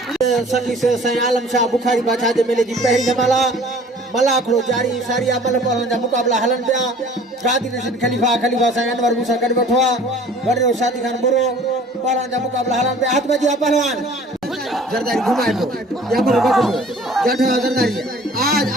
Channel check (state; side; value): normal; both; correlation 0.50